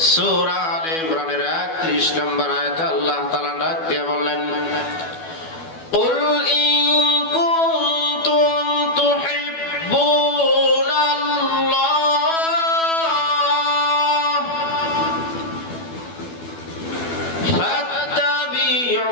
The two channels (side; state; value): right; late; 12 ms